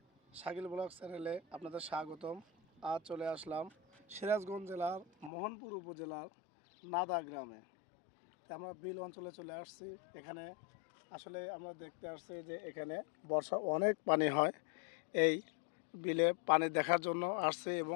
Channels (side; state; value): right; drops out; at 5.3 s